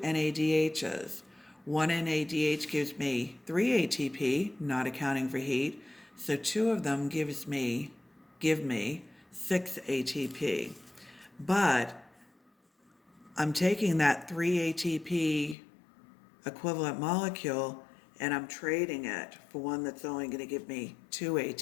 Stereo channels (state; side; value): drops out; right; at 15.6 s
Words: NADHs. 1 NADH gives me 3 ATP, not accounting for heat, so 2 of them give me 6 ATP. But I'm taking that 3 ATP equivalent molecule and I'm trading it for one that's only going to give me 2